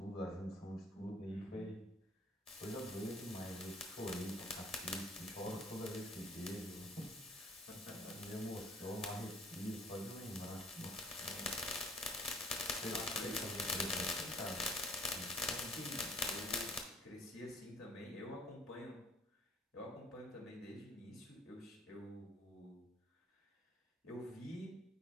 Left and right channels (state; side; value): normal; both; correlation 0.54